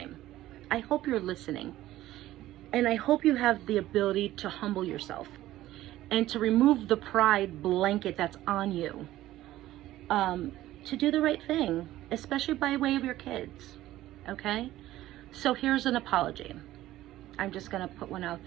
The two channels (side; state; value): left; quieter; 15.0 dB